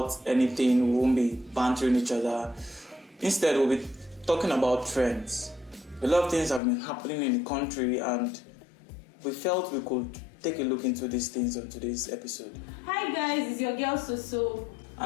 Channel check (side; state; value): right; drops out; at 6.6 s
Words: anything, we won't be bantering each other. Instead, we'll be talking about trends. A lot of things have been happening in the country, and we felt we could take a look into these things on today's episode. Hi guys, it's your girl Soso.